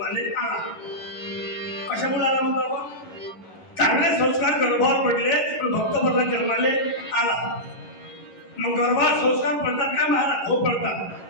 आला. कशामुळे आला म्हणतो आपण? चांगले संस्कार गर्भावर पडले पण भक्त प्रल्हाद जन्माले आला. मग गर्भात संस्कार पडतात काय महाराज? हो पडतात.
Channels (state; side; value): late; right; 11 ms